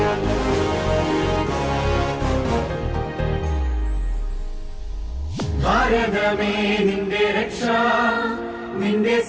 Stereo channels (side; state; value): both; identical; correlation 1.00